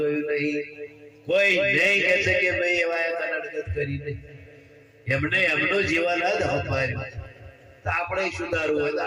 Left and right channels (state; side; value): identical; both; correlation 1.00